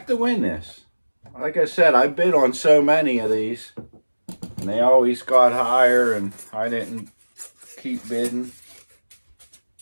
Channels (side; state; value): both; inverted; correlation -1.00